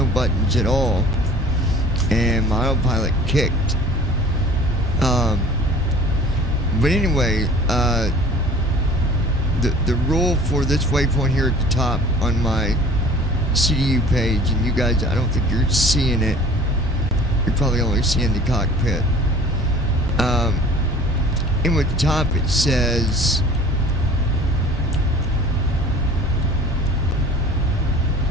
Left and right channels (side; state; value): both; normal; correlation 0.46